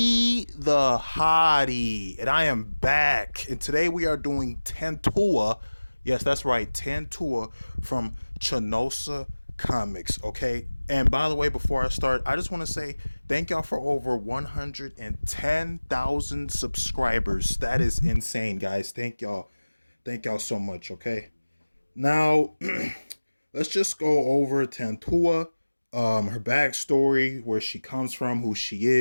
the Hottie, and I am back. And today we are doing Tantua. Yes, that's right, Tantua from Chanosa Comics. Okay. And by the way, before I start, I just want to say thank y'all for over 110,000 subscribers. That is insane, guys. Thank y'all. Thank y'all so much. Okay. Now, let's just go over Tantua, her backstory, where she comes from, who she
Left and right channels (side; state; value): both; inverted; correlation -1.00